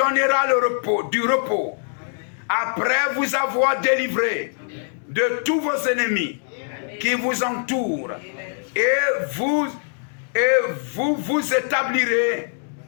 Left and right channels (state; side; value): silent; right; digital silence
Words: du repos après vous avoir délivré de tous vos ennemis qui vous entourent, et vous établirez